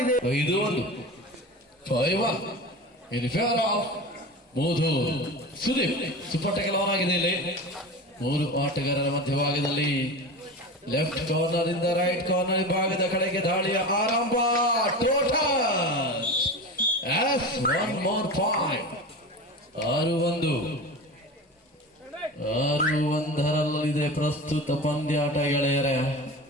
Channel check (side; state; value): both; normal; correlation 0.29